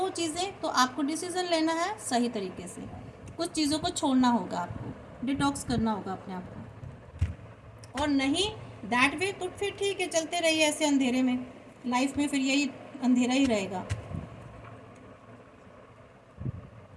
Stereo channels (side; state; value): both; identical; correlation 1.00